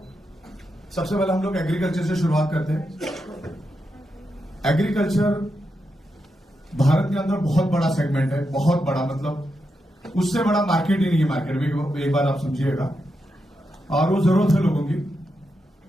सबसे पहले हम लोग एग्रीकल्चर से शुरुआत करते हैं। एग्रीकल्चर भारत के अंदर बहुत बड़ा सेगमेंट है, बहुत बड़ा, मतलब उससे बड़ा मार्केट ही नहीं है मार्केट में, एक बार आप समझिएगा। और वो जरूरत है लोगों की।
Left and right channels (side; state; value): both; normal; correlation 0.85